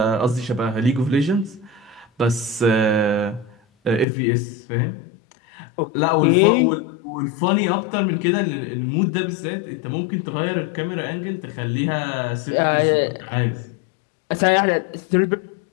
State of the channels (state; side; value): drops out; right; at 4.0 s